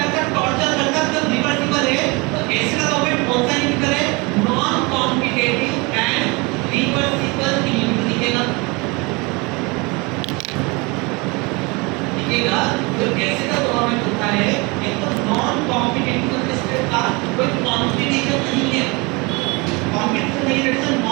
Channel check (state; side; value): quieter; left; 27.0 dB